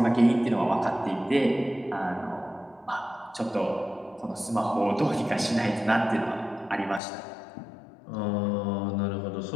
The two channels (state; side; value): drops out; right; at 7.0 s